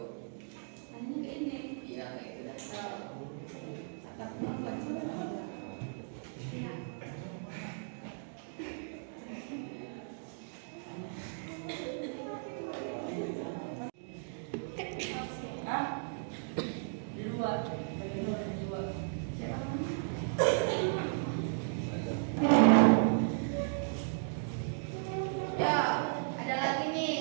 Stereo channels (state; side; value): silent; left; digital silence